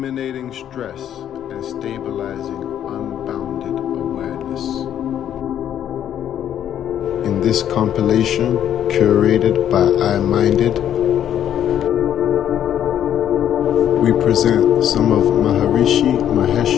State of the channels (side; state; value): right; quieter; 10.2 dB